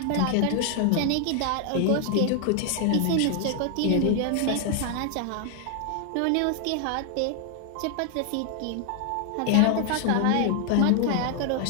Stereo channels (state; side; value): different; both; correlation 0.00